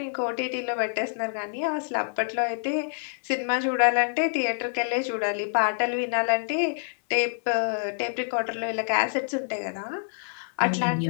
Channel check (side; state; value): right; silent; digital silence